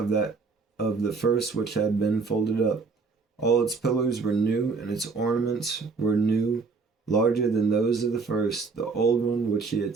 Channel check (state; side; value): quieter; left; 4.6 dB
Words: the first which had been folded up. All its pillars were new, and its ornaments were new, larger than those of the first, the old one which he had